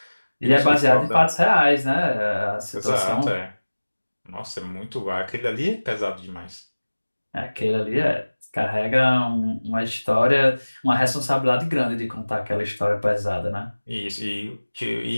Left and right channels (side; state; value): both; inverted; correlation -1.00